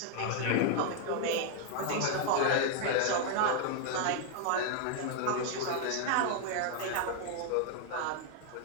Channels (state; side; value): different; both; correlation 0.00